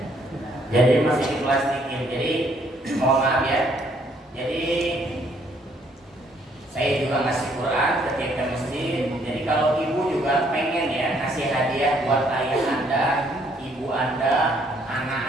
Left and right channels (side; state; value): both; normal; correlation 0.66